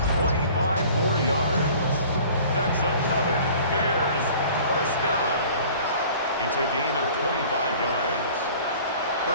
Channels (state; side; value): inverted; both; correlation -0.47